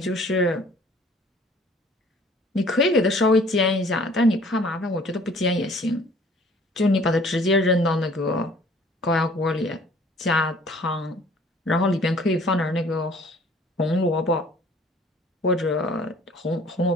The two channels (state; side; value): normal; both; correlation 0.54